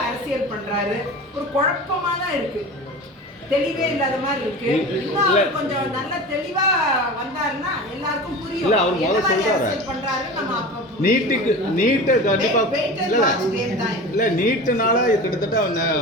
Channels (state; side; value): normal; both; correlation 0.33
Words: அரசியல் பண்றாரு. ஒரு குழப்பமா தான் இருக்கு, தெளிவே இல்லாத மாதிரி இருக்கு. இன்னும் அவர் கொஞ்சம் நல்ல தெளிவா வந்தாருன்னா எல்லாருக்கும் புரியும். இல்ல அவர் முதல்ல சொல்றாரு பண்றாரு. நம்ம நீட்டை கண்டிப்பா இல்ல நீட்டுனால கிட்டத்தட்ட